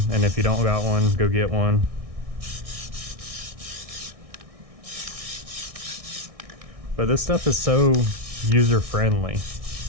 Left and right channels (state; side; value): late; left; 1.6 ms